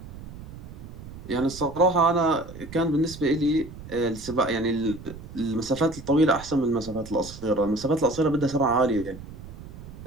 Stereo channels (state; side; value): noise; right; rumble, 14 dB below the sound